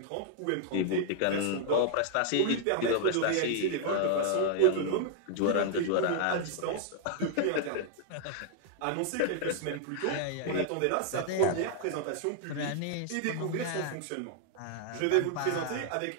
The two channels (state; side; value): different; both; correlation 0.00